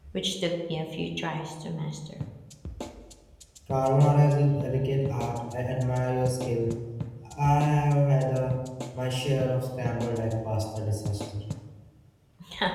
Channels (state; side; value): identical; both; correlation 1.00